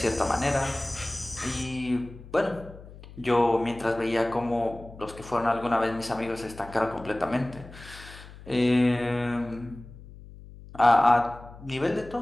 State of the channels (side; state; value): left; noise; hum, 17 dB below the sound